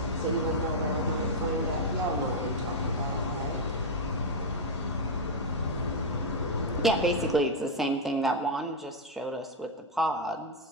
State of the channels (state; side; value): normal; both; correlation -0.01